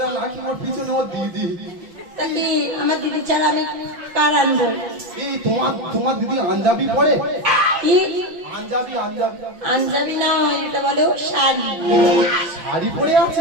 নাকি ওর পিছনে ওর দিদি। তা কি আমার দিদি ছাড়া আমি কার আনবো? এই তোমার তোমার দিদি আঞ্জাবি পরে? কি আঞ্জাবি আঞ্জাবি আঞ্জাবি না হয় এটা বলে শাড়ি। শাড়ি পরে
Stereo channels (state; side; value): late; left; 6.0 ms